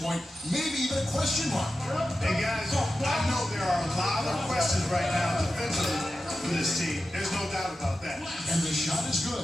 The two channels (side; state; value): both; normal; correlation 0.92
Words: point, maybe even a question mark. Hey, guys, I know there are a lot of questions right now defensively for this team. There's no doubt about that. And the shot is